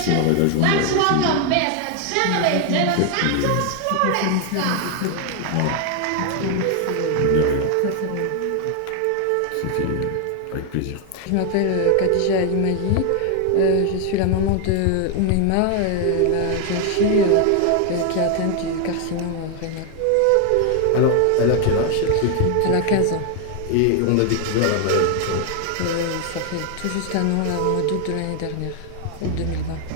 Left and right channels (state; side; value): different; both; correlation 0.00